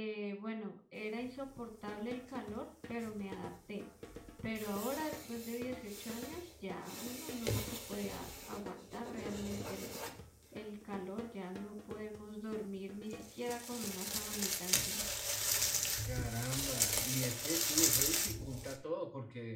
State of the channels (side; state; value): both; identical; correlation 1.00